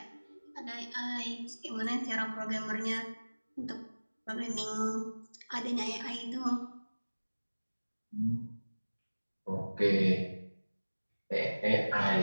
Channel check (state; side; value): inverted; both; correlation -1.00